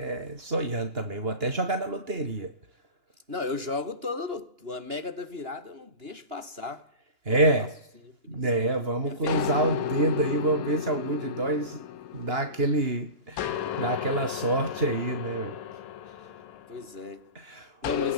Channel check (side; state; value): left; late; 2.9 ms